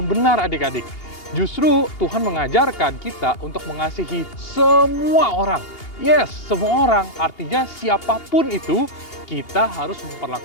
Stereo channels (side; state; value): right; late; 2.8 ms